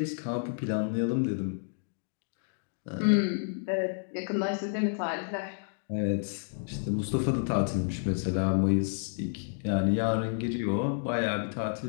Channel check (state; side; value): silent; right; digital silence